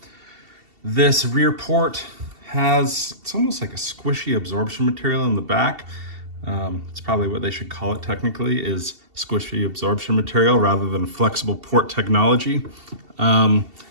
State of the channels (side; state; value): left; late; 2.7 ms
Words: This rear port it's almost like a squishy absorption material in the back. It's probably what they should call it technically, is squishy absorption material rather than flexible port technology.